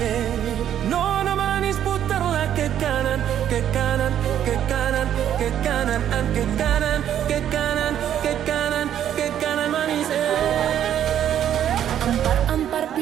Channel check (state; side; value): quieter; left; 10.3 dB